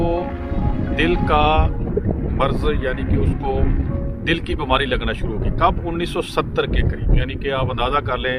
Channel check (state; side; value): identical; both; correlation 1.00